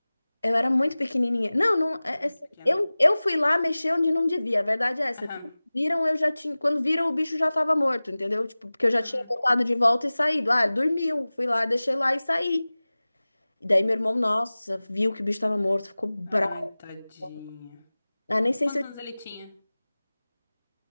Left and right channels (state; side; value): inverted; both; correlation -0.99